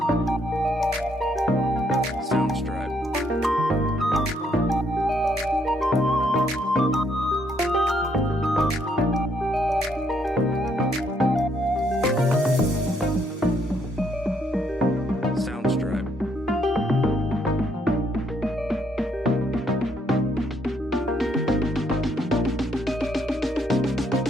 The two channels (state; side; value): normal; both; correlation 0.71